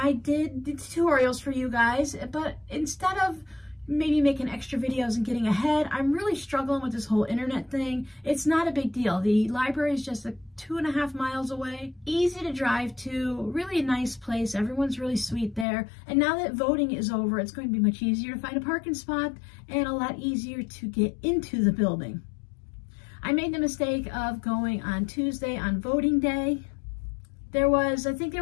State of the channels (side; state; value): right; drops out; at 15.7 s